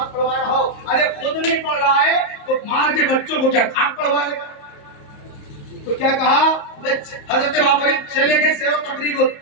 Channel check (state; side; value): late; right; 34 ms